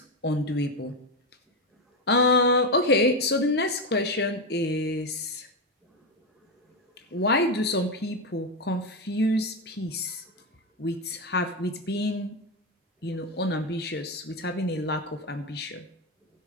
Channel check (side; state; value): both; normal; correlation 0.11